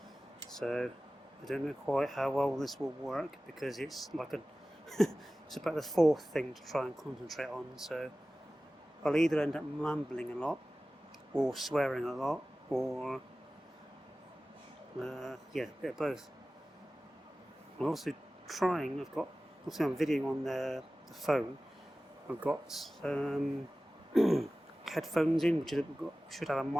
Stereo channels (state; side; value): normal; both; correlation 0.97